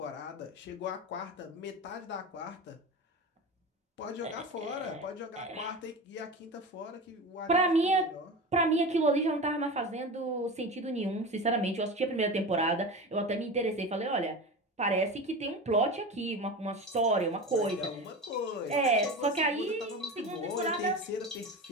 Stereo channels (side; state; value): both; normal; correlation 0.28